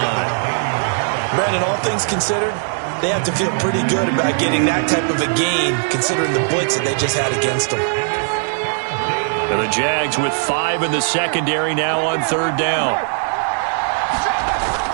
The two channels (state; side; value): silent; left; 62 dB below the other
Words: Brandon, all things considered, they have to feel pretty good about getting that type of a gain, considering the blitz that they just had against them. And the Jags with 5 in the secondary now on 3rd down.